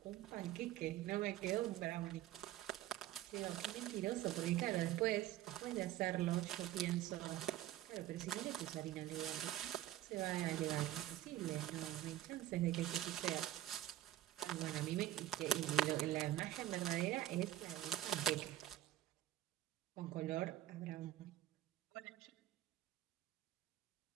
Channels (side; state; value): left; quieter; 13.9 dB